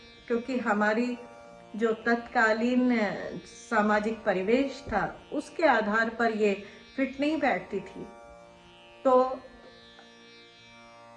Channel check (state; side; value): identical; both; correlation 1.00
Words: क्योंकि हमारी जो तत्कालीन सामाजिक परिवेश था उसके आधार पर ये फिट नहीं बैठती थी। तो